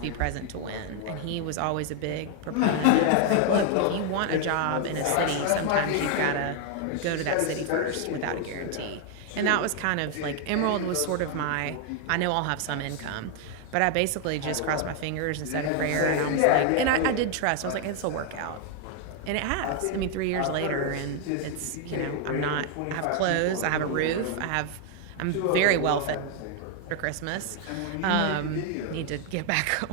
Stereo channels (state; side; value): different; both; correlation 0.00